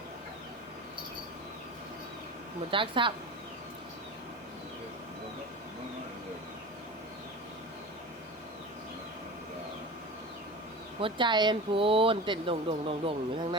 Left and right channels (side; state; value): both; normal; correlation 0.32